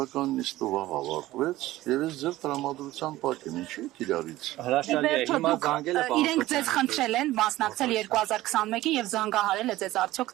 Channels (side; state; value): left; quieter; 16.5 dB